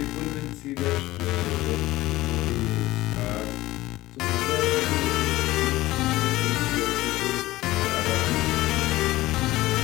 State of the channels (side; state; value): right; quieter; 17.6 dB